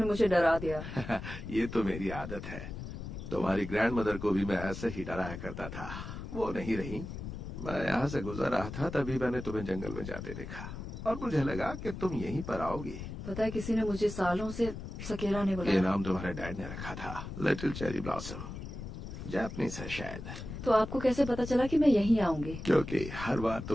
मुझे डरा दिया। ये तो मेरी आदत है। तुम्हारी ग्रैंड मदर को भी मैं ऐसे ही डराया करता था। वो नहीं रही। मैं यहाँ से गुजर रहा था, तभी मैंने तुम्हें जंगल में जाते देखा और मुझे लगा कि तुम यहीं पर आओगी। पता है, किसी ने मुझे सालों से सकेरा ने बुलाया। ये नाम तुम्हारे डैड ने रखा था, लिटिल चेरी ब्लॉसम। जापानीज है शायद। तो आपको कैसे पता चला कि मैं यहीं आऊंगी? क्योंकि हर बार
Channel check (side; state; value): left; noise; rumble, 8 dB below the sound